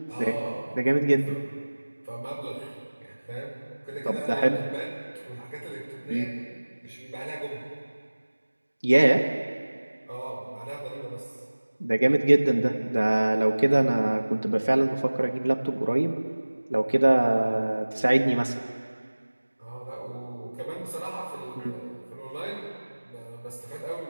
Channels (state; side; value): inverted; both; correlation -1.00